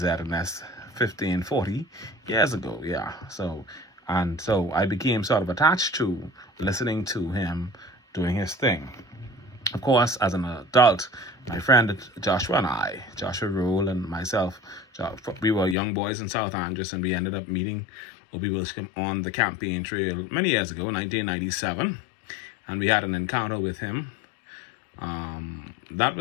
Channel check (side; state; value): right; drops out; at 15.8 s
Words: 40 years ago, yeah. So I became sort of attached to listening to him doing his thing. Of course, as an adult, my friend Joshua Rule and myself, we were young boys in South Andres, and we ended up meeting 𝐒𝐤𝐬𝐬𝐬𝐬 on the campaign trail many years ago, 1997, and we had an encounter with him. That